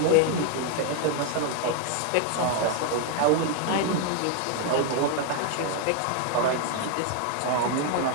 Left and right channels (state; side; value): different; both; correlation 0.01